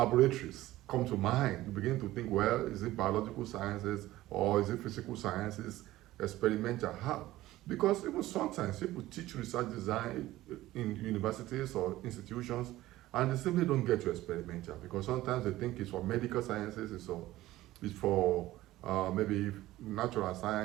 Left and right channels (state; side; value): quieter; left; 16.2 dB